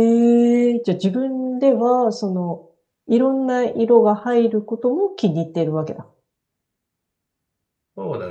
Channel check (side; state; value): both; identical; correlation 1.00